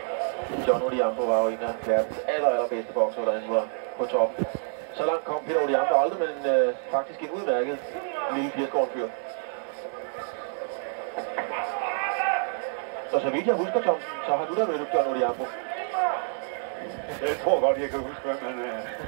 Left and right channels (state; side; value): silent; left; 60 dB below the other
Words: John Odhiambo var jo en af verdens allerbedste bokser, da han var på top. Så langt kom Peter Odhiambo aldrig, men faktisk en udmærket lille 80-årig fyr. Så vidt jeg husker, Thomsen, så har du da mødt John Odhiambo. Jeg tror godt, jeg kan huske, hvem